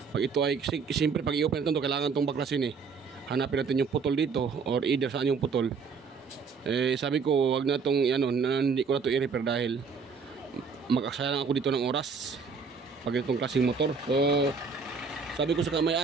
pag ito ay, siyempre pag i-open natin ito, kailangan itong baklasin eh. Hanapin natin yung putol dito, or either saan yung putol. Eh, sabi ko, wag na itong, hindi ko na ito i-repair dahil mag-aksaya lang ako dito ng oras pag itong klaseng motor. So, sabi ko sa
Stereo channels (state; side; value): quieter; left; 5.3 dB